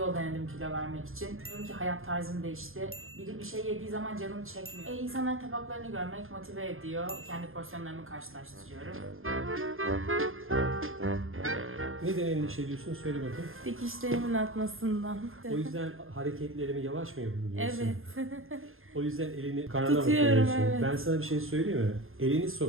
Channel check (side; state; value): left; late; 0.60 ms